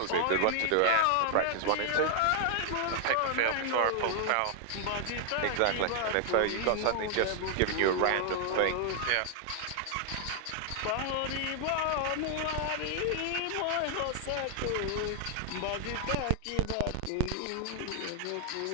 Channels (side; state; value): both; different; correlation 0.00